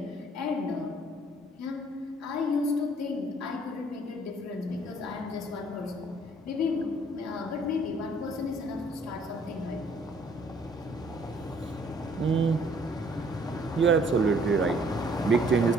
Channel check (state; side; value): normal; both; correlation 0.60